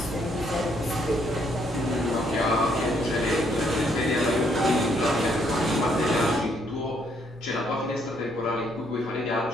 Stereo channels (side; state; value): both; normal; correlation 0.70